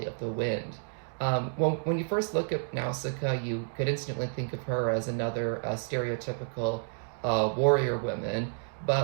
of the Wind. When you first look at Nausicaa, you could instantly think of her as another stereotypical warrior woman,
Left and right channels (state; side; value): silent; left; digital silence